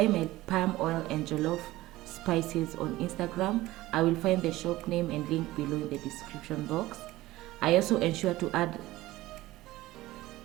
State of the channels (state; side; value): quieter; left; 17.5 dB